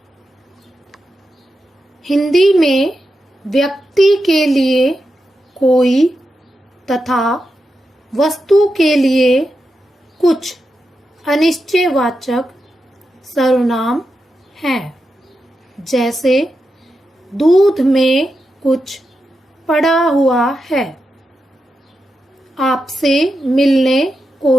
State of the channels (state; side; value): normal; both; correlation 0.88